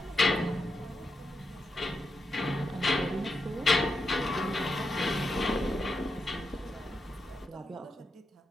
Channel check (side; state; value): both; normal; correlation 0.86